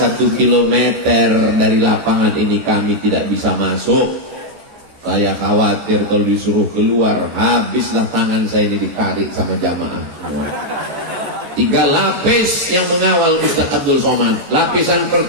kilometer dari lapangan ini kami tidak bisa masuk. Saya khawatir kalau disuruh keluar, habislah tangan saya ini ditarik sama jamaah. 3 lapis yang mengawal Ustadz Abdul Somad. Lapisan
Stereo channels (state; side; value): late; left; 14 ms